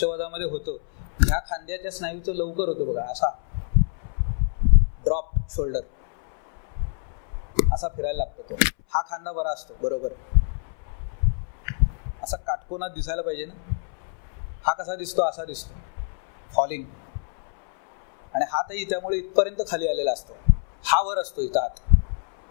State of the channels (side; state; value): right; silent; 61 dB below the other